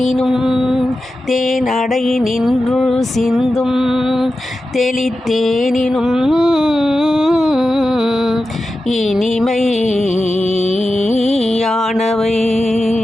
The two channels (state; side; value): normal; both; correlation 0.92